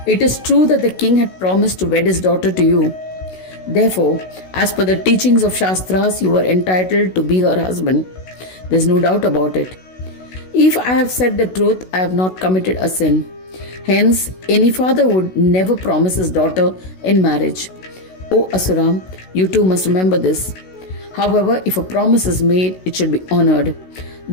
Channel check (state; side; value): late; right; 16 ms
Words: It is true that the king had promised to wed his daughter to you. Therefore, as per the teachings of Shastras, you are entitled to be her husband. There is no doubt about it. If I have said the truth, I have not committed a sin. Hence, any father would never promise his daughter in marriage. O Asura, you too must remember this. However, if a promise is made, it should be honored.